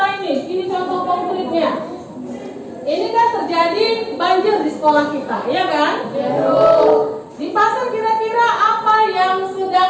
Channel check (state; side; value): identical; both; correlation 1.00